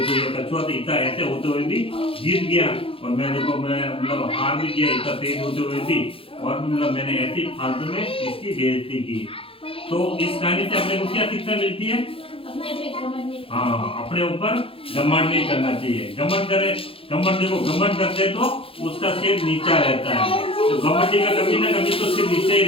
ये कछुआ तो इतना ऐसे होते हुए भी जीत गया और मैं देखो मैं मतलब हार भी गया इतना तेज होते हुए भी और मतलब मैंने ऐसी फालतू में इसकी बेइज्जती की। तो इस कहानी से अपने को क्या शिक्षा मिलती है? हाँ अपने ऊपर घमंड नहीं करना चाहिए। घमंड करते तो उसका सिर नीचा रहता है। तो घमंडी का कभी ना कभी तो सिर नीचे ही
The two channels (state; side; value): late; right; 0.27 ms